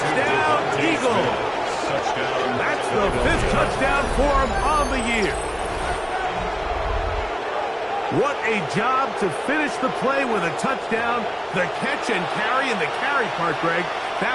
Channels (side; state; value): both; identical; correlation 1.00